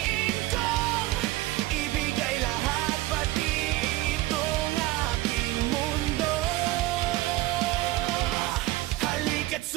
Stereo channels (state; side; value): quieter; left; 17.7 dB